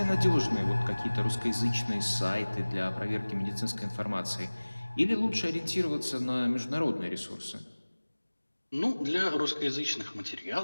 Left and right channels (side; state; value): both; inverted; correlation -1.00